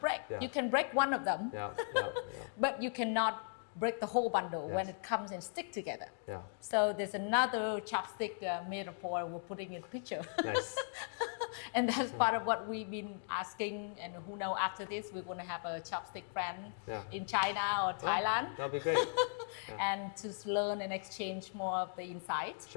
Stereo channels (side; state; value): right; silent; digital silence